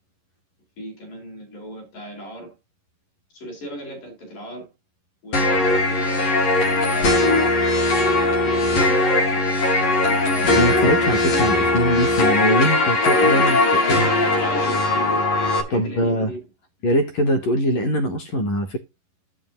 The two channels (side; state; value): right; late; 11 ms